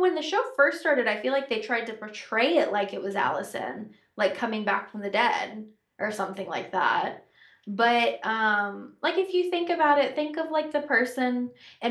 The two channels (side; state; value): both; identical; correlation 1.00